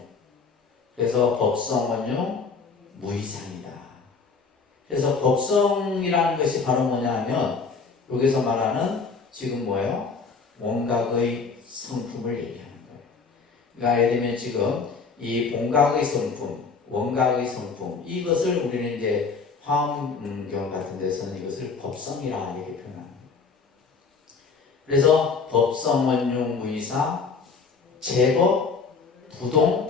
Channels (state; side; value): quieter; right; 4.9 dB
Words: 그래서 법성 원융 무이상이다. 그래서 법성이라는 것이 바로 뭐냐 하면 여기서 말하는 지금 뭐예요? 원각의 성품을 얘기하는 거예요. 그러니까 예를 들면 지금 이 본각의 성품, 원각의 성품 이것을 우리는 이제 화엄경 같은 데서는 이것을 법성이라 이렇게 표현합니다. 그래서 법성 원융 무이사 제법